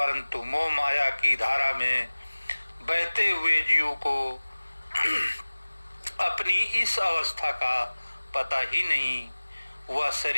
मोह माया की धारा में बहते हुए जीव को अपनी इस अवस्था का पता ही नहीं। वह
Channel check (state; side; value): inverted; both; correlation -1.00